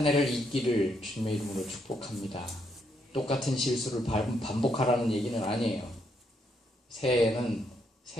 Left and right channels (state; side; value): normal; both; correlation 0.76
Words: 해를 잊기를 주님의 이름으로 축복합니다. 똑같은 실수를 반복하라는 얘기는 아니에요. 새해에는